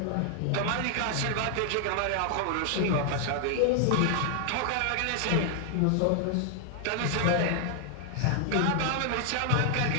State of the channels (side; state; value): both; different; correlation 0.00